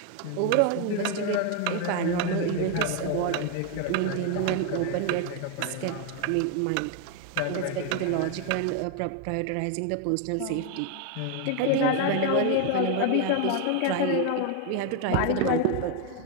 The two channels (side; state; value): both; different; correlation 0.01